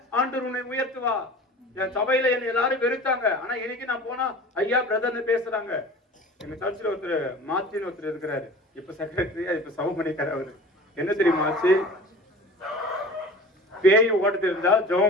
ஆண்டவர் உன்னை உயர்த்துவா. என் சபையில என்ன எல்லாரும் வெறுத்தாங்க, ஆனா இன்னைக்கு நான் போனா ஐயா பிரதர்னு பேசுறாங்க. எங்க சர்ச்சில் ஒருத்தர் மாத்தின்னு ஒருத்தர் இருக்கிறாரு, இப்ப செக்ரட்டரியா, இப்ப சவமணிக்கார். அவரு என்ன தெரியுமா ஆச்சு? பேய் ஓட்ட தெரிஞ்சா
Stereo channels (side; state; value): both; normal; correlation 0.40